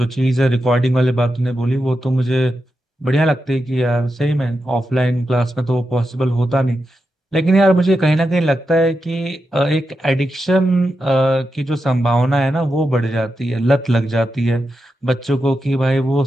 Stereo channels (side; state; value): both; normal; correlation 0.88